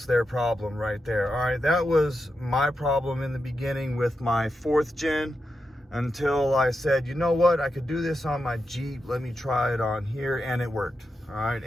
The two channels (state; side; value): normal; both; correlation 0.87